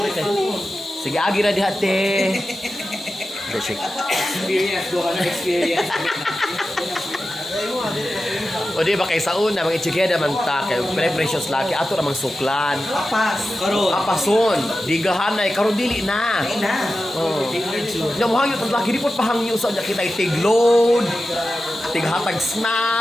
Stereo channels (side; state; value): both; normal; correlation 0.93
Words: kay. Sige agi ra diha te. Check. Experience, doon ka na experience. O di ba kay sa una, mga itchigeda man ta, kay precious laki, ato namang suklan. Papas. Karon. Apason, digahanay, karon dili na. Ay na. Oh. Nya mo hangyo tag laki di pod pahangyo sa nya kita tigload, tighatag